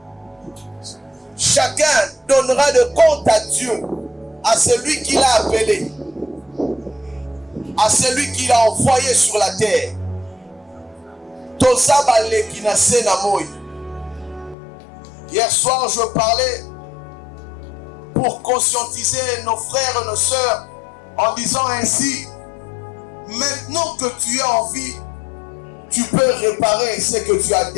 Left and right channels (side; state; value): right; drops out; at 14.6 s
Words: Chacun donnera de compte à Dieu, à celui qui l'a appelé, à celui qui l'a envoyé sur la terre. Hier soir, je parlais pour conscientiser nos frères et nos sœurs en disant ainsi: maintenant que tu es en vie, tu peux réparer ce que tu as